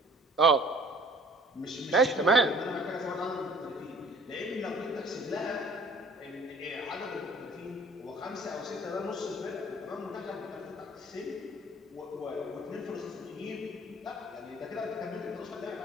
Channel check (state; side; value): normal; both; correlation 0.52